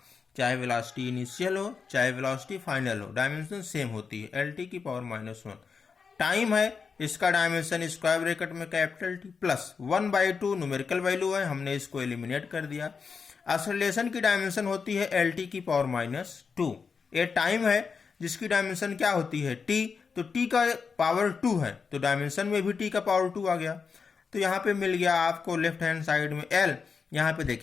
चाहे वेलोसिटी इनिशियल हो चाहे वेलोसिटी फाइनल हो, डायमेंशन सेम होती है, एल टी की पावर -1। टाइम है, इसका डायमेंशन स्क्वायर ब्रैकेट में capital T plus 1/2 numerical value है, हमने इसको एलिमिनेट कर दिया। एक्सेलरेशन की डायमेंशन होती है एल टी की पावर -2। ये टाइम है जिसकी डायमेंशन क्या होती है, टी। तो टी का पावर 2 है तो डायमेंशन में भी टी का पावर 2 आ गया। तो यहाँ पे मिल गया आपको लेफ्ट हैंड साइड में एल। यहाँ पे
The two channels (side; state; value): right; quieter; 5.5 dB